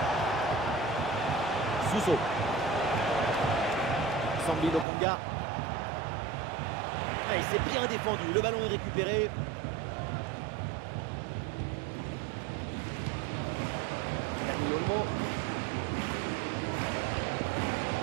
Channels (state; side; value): drops out; left; at 4.9 s